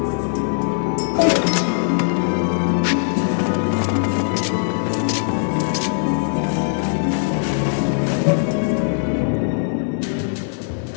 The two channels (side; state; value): right; silent; digital silence